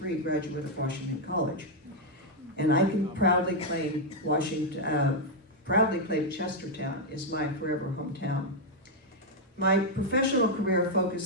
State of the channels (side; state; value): both; normal; correlation -0.01